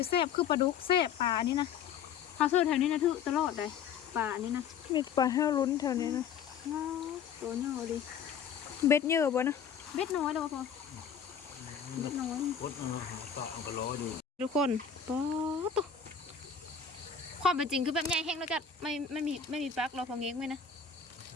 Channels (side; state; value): right; quieter; 7.1 dB